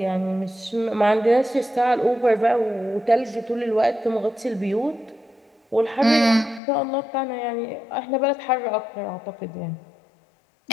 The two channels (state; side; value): drops out; right; at 6.6 s